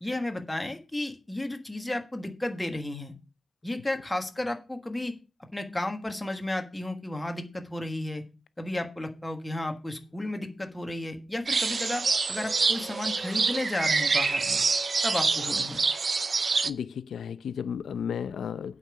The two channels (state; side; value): normal; both; correlation 0.92